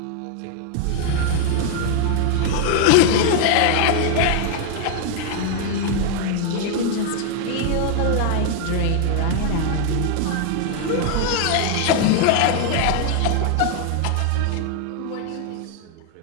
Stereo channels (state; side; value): different; both; correlation 0.00